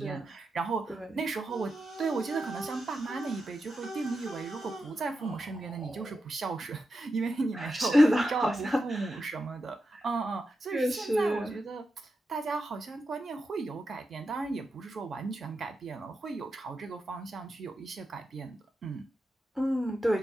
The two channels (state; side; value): normal; both; correlation 0.88